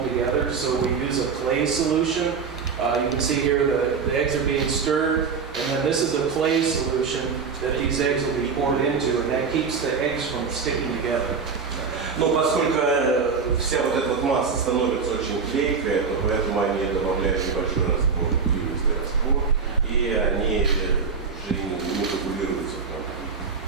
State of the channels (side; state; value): left; quieter; 5.5 dB